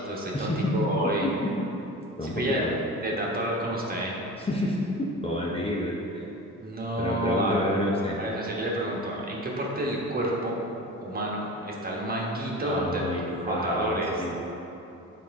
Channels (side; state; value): both; normal; correlation 0.33